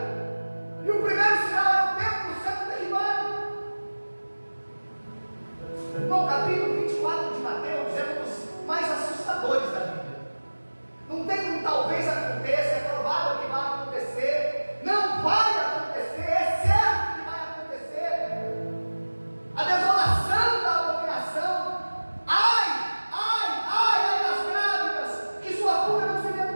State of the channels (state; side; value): inverted; both; correlation -1.00